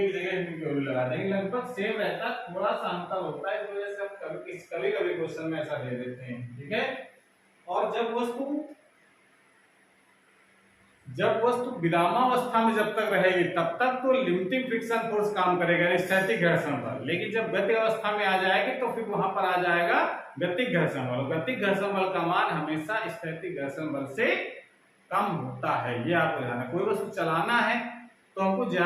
की जगह म्यू की वैल्यू लगा देंगे, लगभग सेम रहता है, थोड़ा सा अंतर होता है, इस वजह से हम कभी कभी क्वेश्चन में ऐसा दे देते हैं, ठीक है। और जब वस्तु विरामावस्था में जब तक रहेगी तब तक तो लिमिटिंग फ्रिक्शन फोर्स काम करेगा, स्थैतिक घर्षण बल। लेकिन जब गति अवस्था में आ जाएगी तो फिर वहां पर आ जाएगा गतिक घर्षण बल। गतिक घर्षण बल का मान हमेशा स्थैतिक घर्षण बल से कम होता है, ये आपको ध्यान है। कोई वस्तु चलाना है तो हमको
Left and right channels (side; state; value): both; identical; correlation 1.00